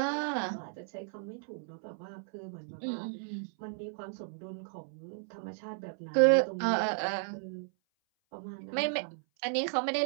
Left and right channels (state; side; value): silent; left; 55 dB below the other